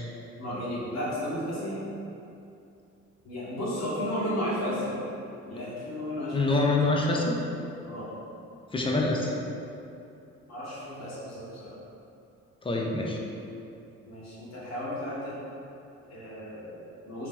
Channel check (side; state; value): both; normal; correlation 0.37